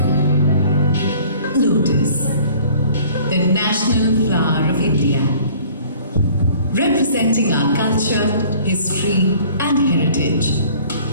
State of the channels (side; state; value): both; inverted; correlation -0.51